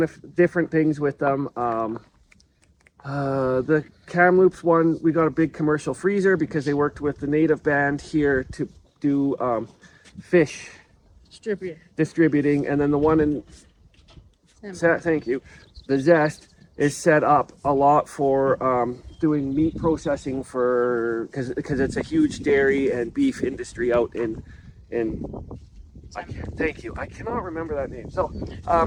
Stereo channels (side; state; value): both; identical; correlation 1.00